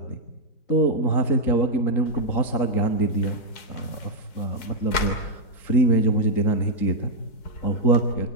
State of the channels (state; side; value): late; right; 4.6 ms